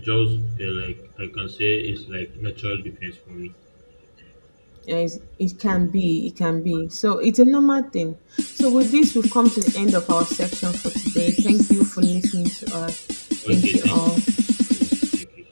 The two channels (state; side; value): inverted; both; correlation -1.00